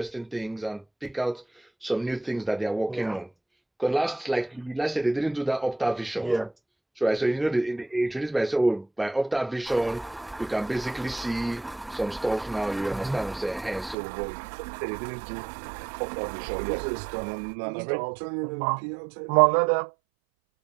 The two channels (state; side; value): drops out; left; at 14.0 s